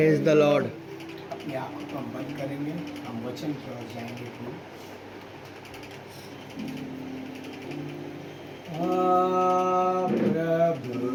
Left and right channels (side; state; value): both; identical; correlation 1.00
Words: the Lord. अपनी आंखों को हम बंद करेंगे, हम वचन की ओर जाएंगे। प्रभु